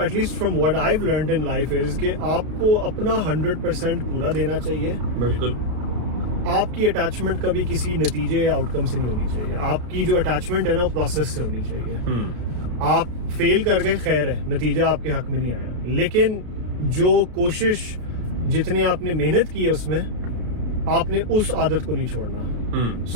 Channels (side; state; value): left; late; 33 ms